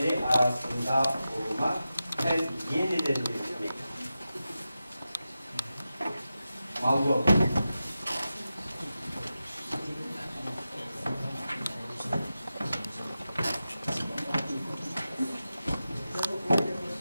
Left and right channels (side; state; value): both; inverted; correlation -0.92